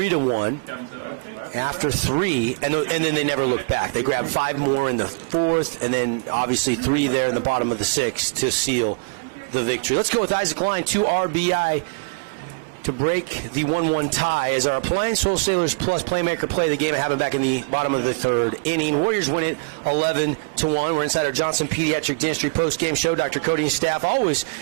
after 3, and then they never looked back. They grabbed 5 more in the 4th, and then obviously 3 there in the bottom of the 6th to seal the victory. Let's go with Isaac Lyon, 2 RBI to break the 1-1 tie as our Appliance Wholesalers Plus Playmaker play the game and have it back in the bottom of the 3rd inning. Warriors win it 11-1. We're inside our Johnson Pediatric Dentistry post-game show. Dr. Cody and staff always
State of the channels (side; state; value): left; quieter; 34.6 dB